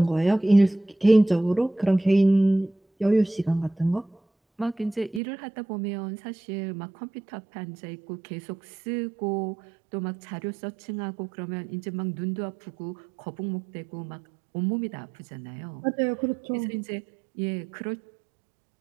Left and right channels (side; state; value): left; drops out; at 5.2 s